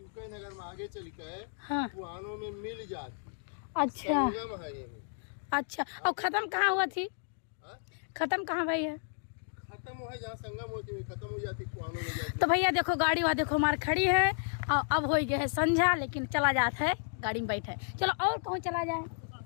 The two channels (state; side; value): silent; right; digital silence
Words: नगर में आगे चल के हाँ, कुआनो में मिल जाती। अच्छा अच्छा, और खत्म कहाँ हुआ थी? खत्म कहाँ भाई है? खत्म हुआ जहाँ संगम होती है, खत्म हो जाती कुआनो में जाती। तो भैया देखो गाड़ी वहाँ देखो हमारी खड़ी है। और अब हो गया है संझा, लेकिन चला जाता है गाड़ी में बैठे। चलो और कहूँ चला जाए?